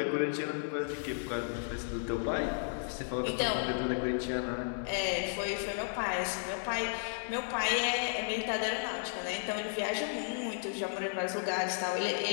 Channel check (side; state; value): right; silent; 55 dB below the other